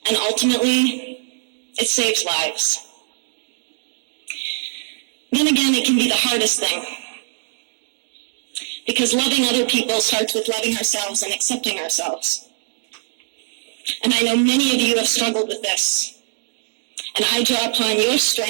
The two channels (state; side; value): silent; left; digital silence